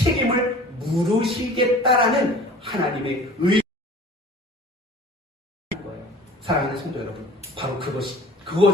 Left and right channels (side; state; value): both; normal; correlation 0.44